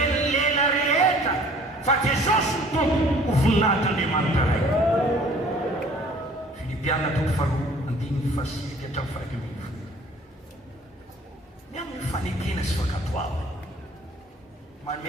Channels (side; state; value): both; normal; correlation 0.52